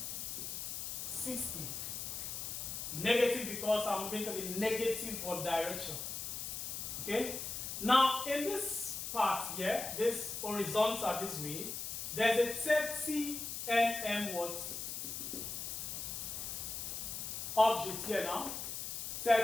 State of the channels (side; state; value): left; noise; hiss, 5 dB below the sound